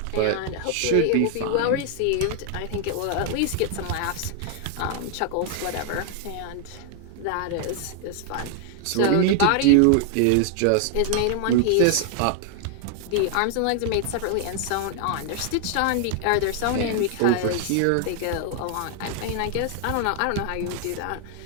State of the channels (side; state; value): both; different; correlation 0.00